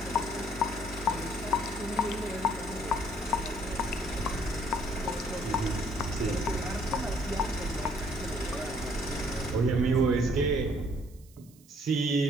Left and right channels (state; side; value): noise; right; hiss, 27 dB below the sound